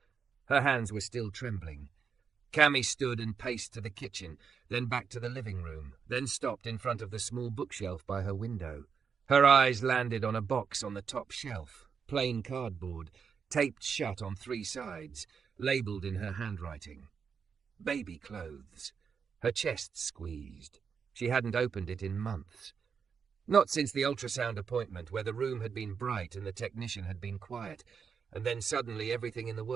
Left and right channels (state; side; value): quieter; left; 6.4 dB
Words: Her hands were still trembling. Cami stood and paced to the kitchen, then back to the living room, then stopped in front of the small bookshelf by her window. Her eyes landed on a box on the top shelf, plain cardboard, taped shut on 3 sides, labelled in her handwriting. Baby clothes. Her chest squeezed. She hadn't opened it in months. Not since the ultrasound appointment, where the room had been bright and the technician had been quiet, and then suddenly everything in the